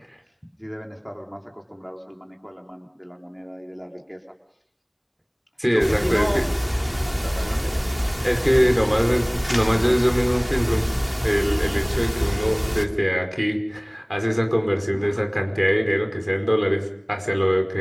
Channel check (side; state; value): both; identical; correlation 1.00